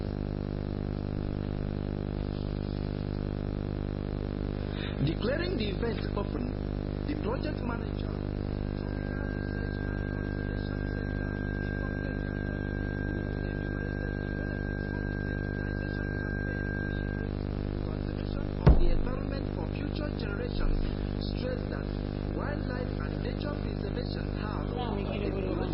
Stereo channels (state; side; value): identical; both; correlation 1.00